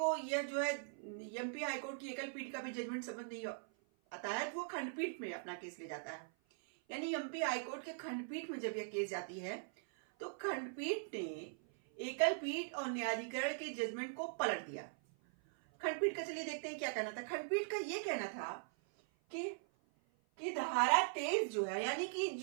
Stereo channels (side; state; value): left; silent; 50 dB below the other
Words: यह जो है एमपी हाईकोर्ट की एकल पीठ का भी जजमेंट समझ नहीं आता है, तो वो खंडपीठ में अपना केस ले जाता है। यानी एमपी हाईकोर्ट के खंडपीठ में जब यह केस जाती है तो खंडपीठ ने एकल पीठ और न्यायाधिकरण के जजमेंट को पलट दिया। खंडपीठ का चलिए देखते हैं क्या कहना था। खंडपीठ का यह कहना था कि धारा 23 जो है, यानी कि